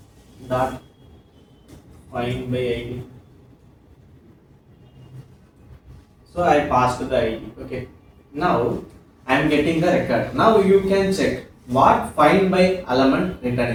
dot find by ID. So I passed the ID. Okay. Now I am getting the record. Now you can check what find by element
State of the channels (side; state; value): both; identical; correlation 1.00